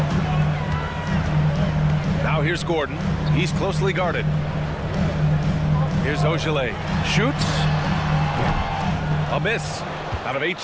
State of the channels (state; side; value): identical; both; correlation 1.00